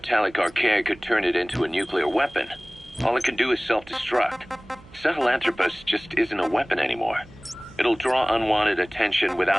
archaea could turn it into a nuclear weapon, all it can do is self-destruct. Sahelanthropus just isn't a weapon anymore. It'll draw unwanted attention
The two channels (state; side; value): noise; right; hum, 23 dB below the sound